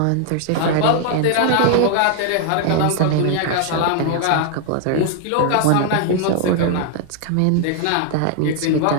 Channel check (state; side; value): different; both; correlation 0.00